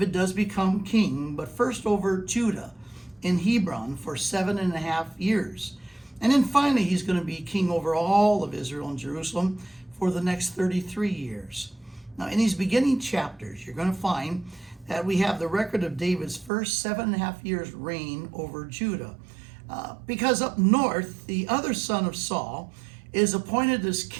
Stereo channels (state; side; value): drops out; left; at 16.5 s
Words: does become king, but first over Judah in Hebron for 7.5 years. And then finally, he's going to be king over all of Israel and Jerusalem for the next 33 years. Now, in these beginning chapters, you're going to find that we have the record of David's first 7.5 years reign over Judah. Because up north, the other son of Saul is appointed as